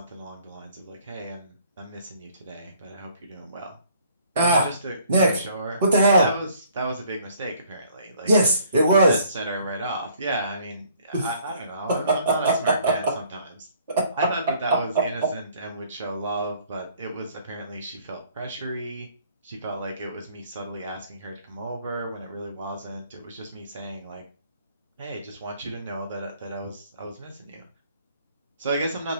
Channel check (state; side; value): inverted; both; correlation -0.60